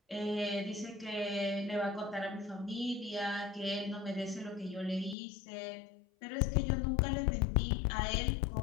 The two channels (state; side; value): drops out; right; at 5.2 s